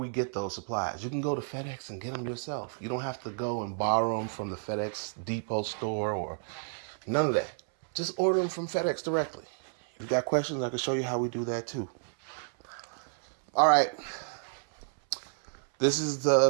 get those supplies. You can go to FedEx and get them yourself. You don't have to go and borrow them from the FedEx depot store or none of that. Just order them from FedEx directly. If you got questions, I can show you how we do that too. All right. This is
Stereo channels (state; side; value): silent; left; 57 dB below the other